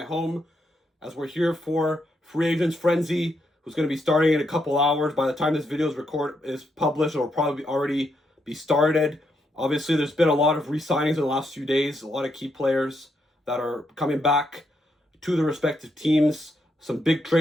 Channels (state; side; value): normal; both; correlation 0.79